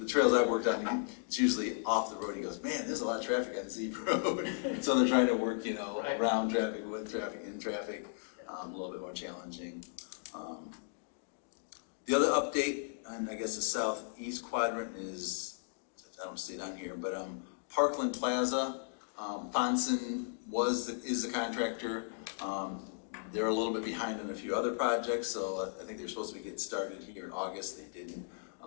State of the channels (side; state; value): right; silent; digital silence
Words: trails I've worked on, it's usually off the road. He goes, man, there's a lot of traffic on Z Road. So they're trying to work, Right. around traffic, with traffic, in traffic, a little bit more challenging. The other update on, I guess, the southeast quadrant is, I don't see it on here, but Parkland Plaza. Fonson is the contractor. They're a little bit behind on a few other projects, so I think they're supposed to be getting started here in August. They didn't.